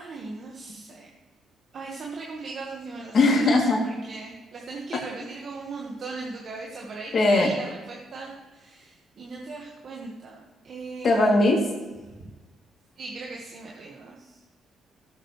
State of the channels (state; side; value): normal; both; correlation 0.76